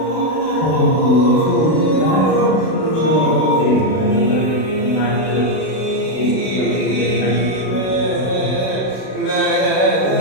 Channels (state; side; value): late; right; 32 ms